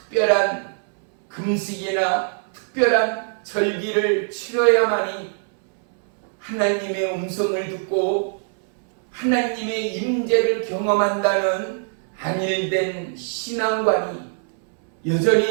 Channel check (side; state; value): left; silent; 63 dB below the other